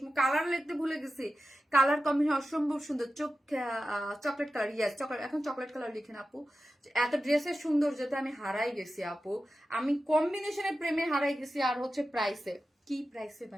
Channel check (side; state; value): both; normal; correlation 0.93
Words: কালার লিখতে ভুলে গেছি। কালার কম্বিনেশন অসম্ভব সুন্দর, চকলেট কালার, ইয়েস চকলেট, এখন চকলেট কালার লিখেন আপু। এত ড্রেসের সৌন্দর্যতে আমি হারাই গেছি আপু, আমি কম্বিনেশনের প্রেমে হারাই গেছি। আর হচ্ছে প্রাইসে, কি প্রাইসে